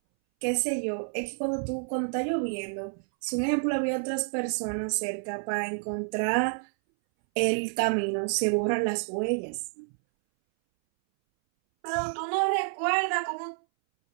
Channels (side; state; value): left; silent; 59 dB below the other